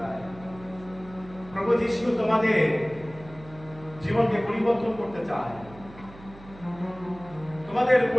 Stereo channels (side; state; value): right; noise; hum, 19 dB below the sound